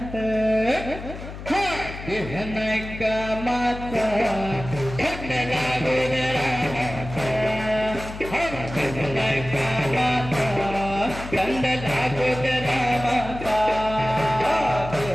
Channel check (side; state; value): left; noise; hum, 11 dB below the sound